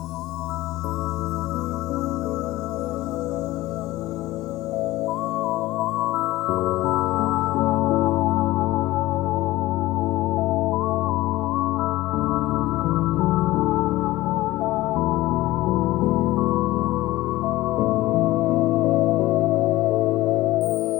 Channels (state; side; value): quieter; right; 17.6 dB